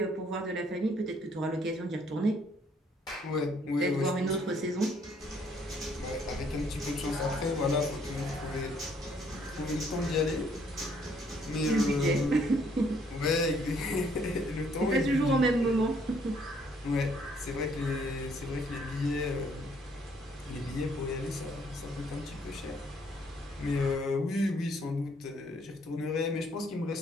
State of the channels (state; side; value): normal; both; correlation 0.66